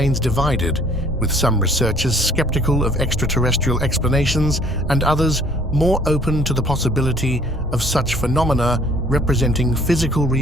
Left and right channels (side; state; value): both; normal; correlation 0.57